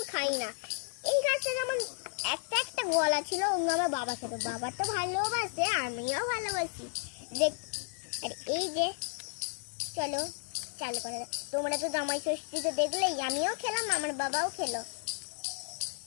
খাই না। এই গাছটা যেমন একটা একটা গলা ছিল, অন্য আমার বাবা খেত, বাবা তো ভালোবাসে, আমিও ভালোবাসি দেখ। আর এই যে চলো চালু করে, তোমরা তো জামাই ষষ্ঠীতে দেখলেই, আমিও খেলাম, আমার বাবাও খেলো।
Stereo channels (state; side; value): silent; right; 56 dB below the other